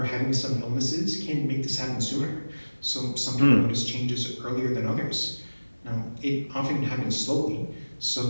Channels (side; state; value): both; inverted; correlation -1.00